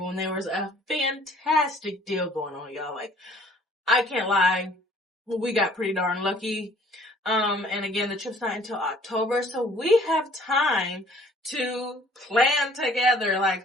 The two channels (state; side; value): normal; both; correlation 0.56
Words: there was a fantastic deal going on, y'all. Like, I can't lie. We got pretty darn lucky. And again, the trip's not until October, so we have time to plan together.